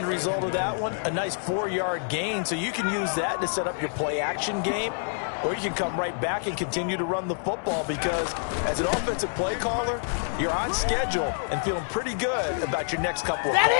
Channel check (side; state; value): right; silent; digital silence